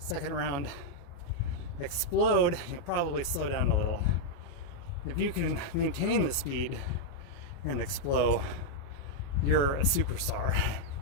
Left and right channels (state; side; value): late; right; 28 ms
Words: round explode. You'll probably slow down a little. If you can maintain the speed and explode, you're a superstar.